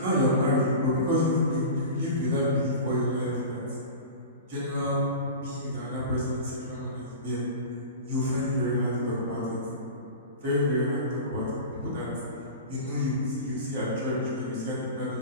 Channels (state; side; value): inverted; both; correlation -0.32